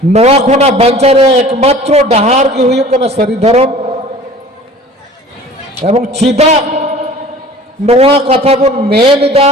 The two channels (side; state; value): both; normal; correlation 0.45